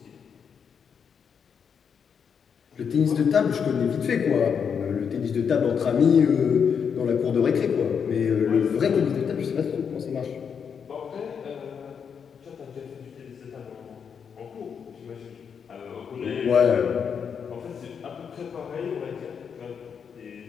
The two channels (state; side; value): quieter; right; 6.9 dB